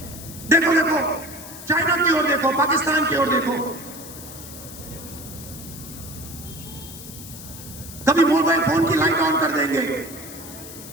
देखो देखो चाइना की ओर देखो, पाकिस्तान की ओर देखो। कभी मोबाइल फोन की लाइट ऑन कर देंगे,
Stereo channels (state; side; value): noise; left; hiss, 14 dB below the sound